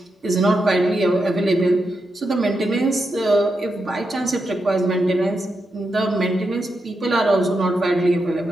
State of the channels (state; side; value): normal; both; correlation 0.86